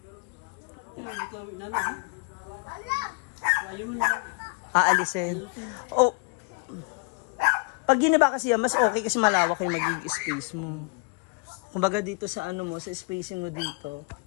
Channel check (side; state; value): right; quieter; 35.2 dB